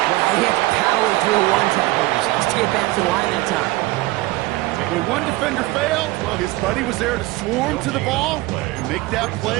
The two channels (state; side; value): quieter; left; 19.6 dB